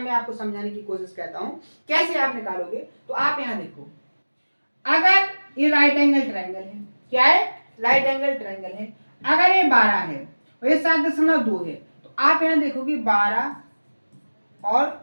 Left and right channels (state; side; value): inverted; both; correlation -1.00